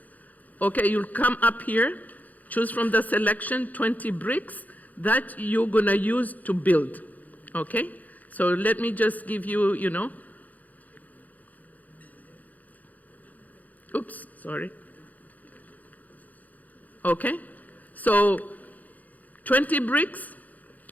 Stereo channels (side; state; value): right; late; 0.079 ms